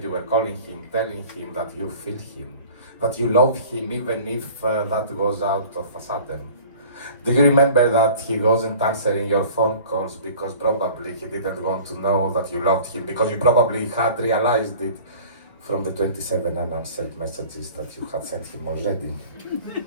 you were calling him, telling him that you feel him, that you love him even if that goes out of a sudden? Do you remember that he wasn't answering your phone calls because probably he didn't want to know that you loved him, because you probably had realized it from the 27 unanswered messages that you had sent him already?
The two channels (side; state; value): both; inverted; correlation -0.45